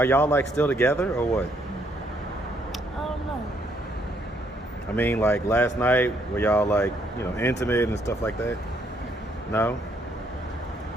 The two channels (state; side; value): normal; both; correlation 0.70